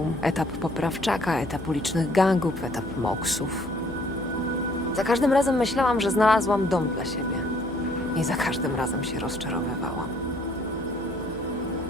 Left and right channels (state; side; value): noise; left; hum, 17 dB below the sound